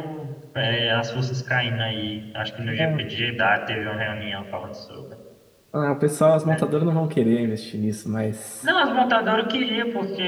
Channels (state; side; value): identical; both; correlation 1.00